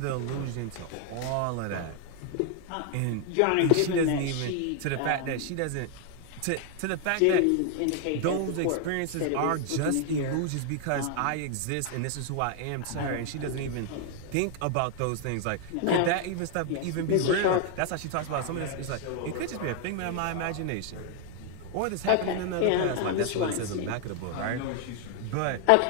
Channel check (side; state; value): both; different; correlation 0.00